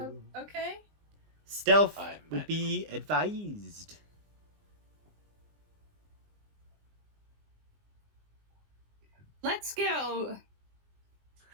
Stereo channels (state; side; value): late; left; 19 ms